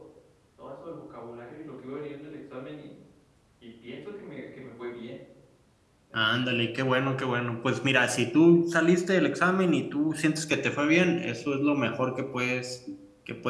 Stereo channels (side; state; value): both; identical; correlation 1.00